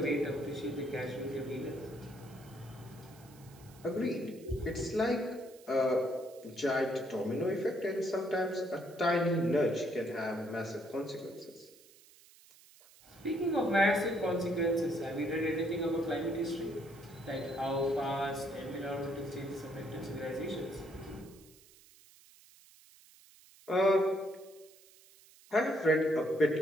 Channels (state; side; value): noise; right; hiss, 24 dB below the sound